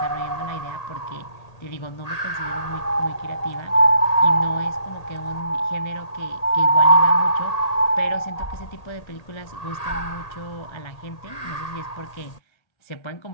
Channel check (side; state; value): right; late; 1.8 ms